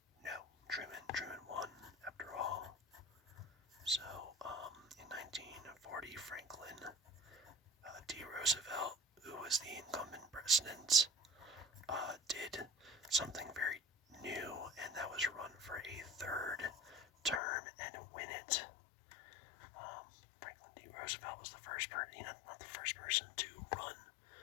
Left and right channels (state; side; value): drops out; right; at 17.4 s